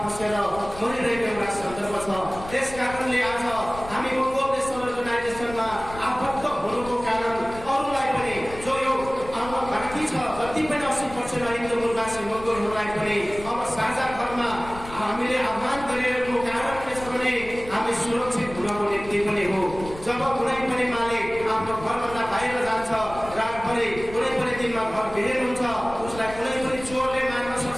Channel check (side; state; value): left; noise; rumble, 15 dB below the sound